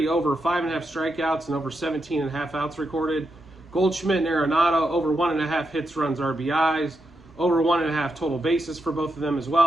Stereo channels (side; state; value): both; normal; correlation 0.84